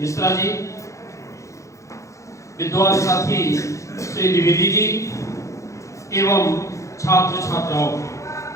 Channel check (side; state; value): right; late; 0.15 ms